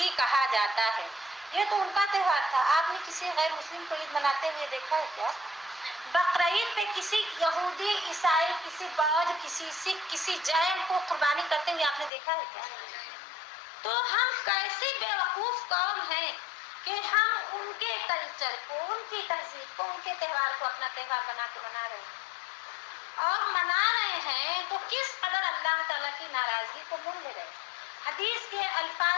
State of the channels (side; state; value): right; drops out; at 12.1 s